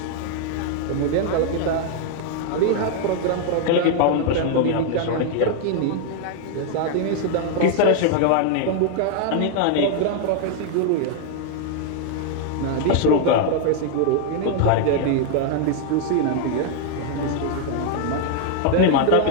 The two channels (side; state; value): both; different; correlation 0.00